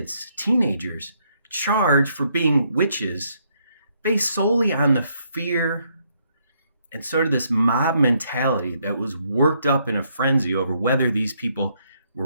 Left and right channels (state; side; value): inverted; both; correlation -0.73